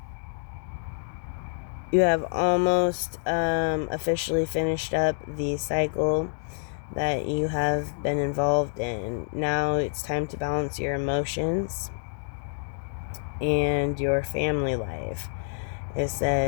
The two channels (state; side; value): silent; right; digital silence